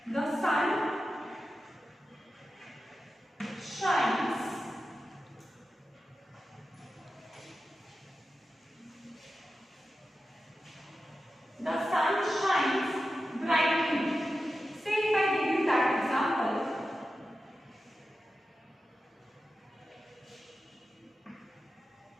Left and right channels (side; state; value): both; normal; correlation 0.92